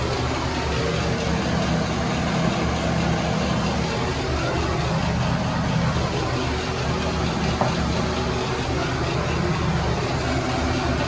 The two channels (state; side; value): identical; both; correlation 1.00